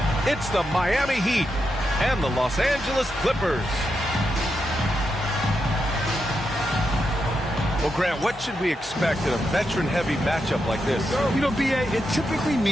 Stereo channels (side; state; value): both; normal; correlation 0.85